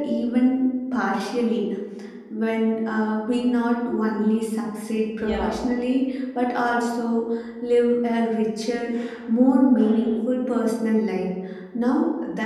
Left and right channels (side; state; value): both; identical; correlation 1.00